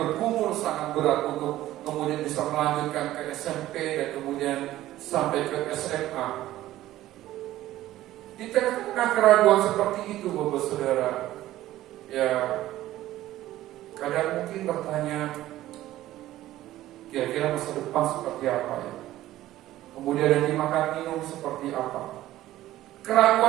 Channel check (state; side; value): quieter; left; 14.7 dB